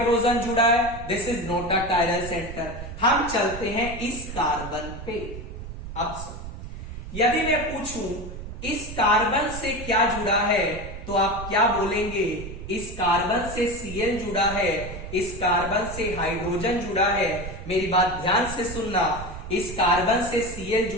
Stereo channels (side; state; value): right; noise; rumble, 10 dB below the sound